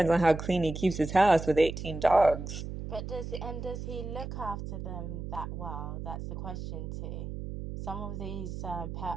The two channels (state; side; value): noise; right; hum, 7 dB below the sound